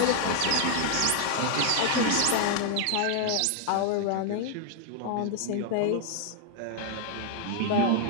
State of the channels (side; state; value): both; different; correlation 0.00